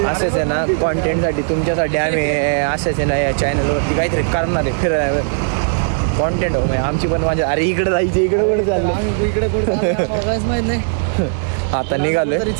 असंच आहे ना कॉन्टेंटसाठी तुमच्यासाठी आम्ही असंच आहे ना या चॅनलवरती काहीतरी करणार आहे. फिरायला कॉन्टेंट हो आमची पण माझ्या. अरे इकडे जायचं, इकडे कुठे चाललं, इकडे माहित नाही. आता निघालोय.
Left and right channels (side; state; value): left; silent; digital silence